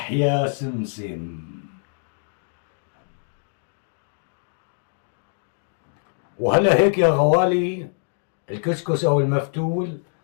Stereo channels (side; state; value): right; silent; digital silence